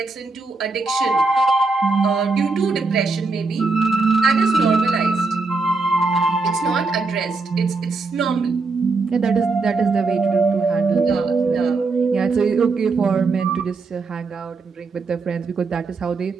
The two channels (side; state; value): left; quieter; 4.0 dB